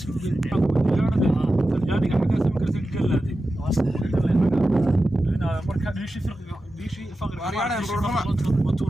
ku gelin Talyaaniga xaga sam karti galaadi ina marka diishi faqri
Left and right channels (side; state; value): both; normal; correlation 0.93